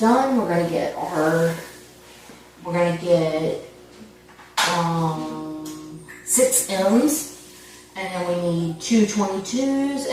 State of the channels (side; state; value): both; identical; correlation 1.00